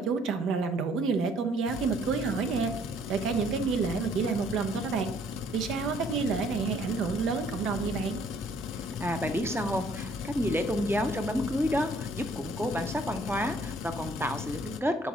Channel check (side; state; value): both; normal; correlation 0.62